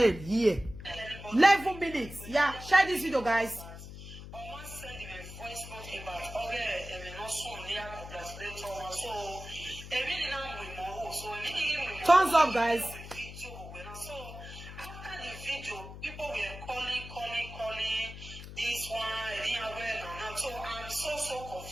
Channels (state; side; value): noise; left; hum, 12 dB below the sound